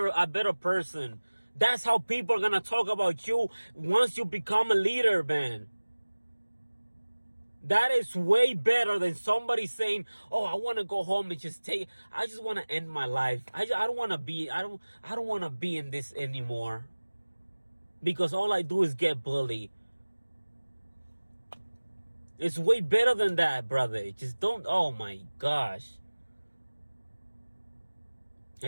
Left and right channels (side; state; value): both; inverted; correlation -1.00